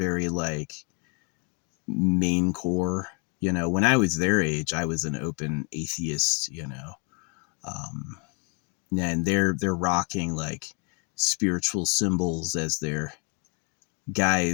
like main core. You know, when I was their age, I was an open atheist, you know. Um, and they're rocking like spiritual symbols as their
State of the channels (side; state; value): right; quieter; 36.0 dB